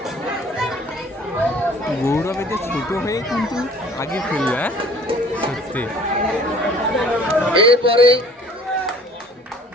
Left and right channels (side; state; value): both; normal; correlation 0.51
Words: গৌরব এতে ছোট হয়ে কিন্তু আগে ফেলবে, সত্যি। এরপরে